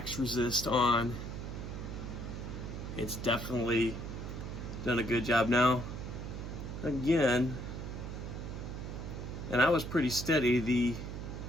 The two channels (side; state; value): right; noise; hum, 7 dB below the sound